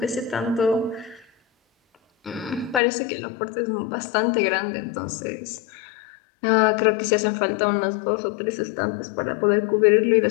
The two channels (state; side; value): drops out; right; at 2.8 s